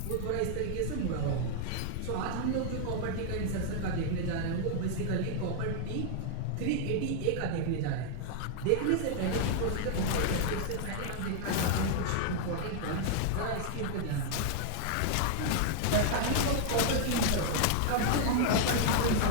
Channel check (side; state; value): both; different; correlation 0.00